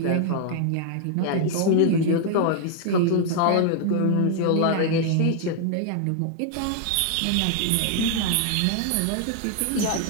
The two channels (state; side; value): different; both; correlation 0.00